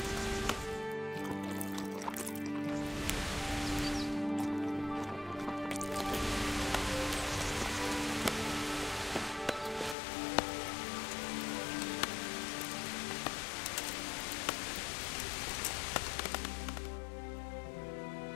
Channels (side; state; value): right; drops out; at 10.0 s